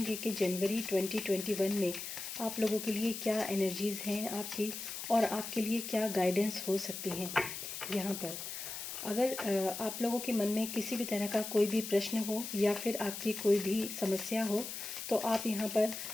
कि जनवरी 2021 में आप लोगों के लिए क्या एनर्जीज़ हैं आपकी और आपके लिए क्या गाइडेंस हो सकती हैं। यहाँ पर अगर आप लोगों के मन में किसी भी तरह का कोई भी प्रश्न हो या फिर आपकी कोई भी समस्या हो तो आप यहाँ पर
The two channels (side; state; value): left; noise; hiss, 7 dB below the sound